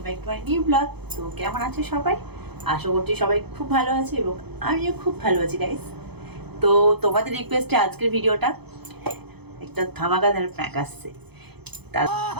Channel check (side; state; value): left; late; 0.98 ms